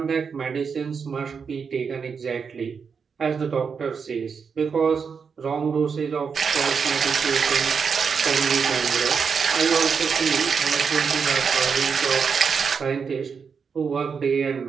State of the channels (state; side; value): quieter; left; 6.0 dB